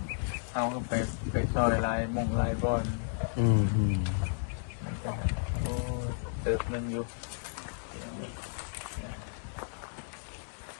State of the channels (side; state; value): right; silent; digital silence